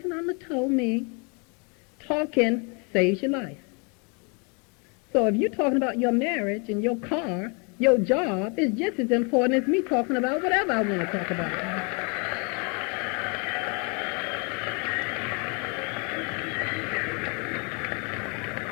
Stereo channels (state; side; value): quieter; right; 33.8 dB